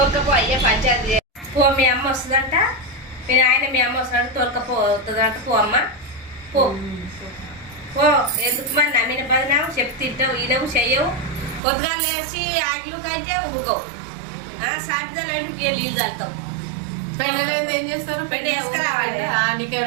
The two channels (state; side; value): drops out; left; at 11.6 s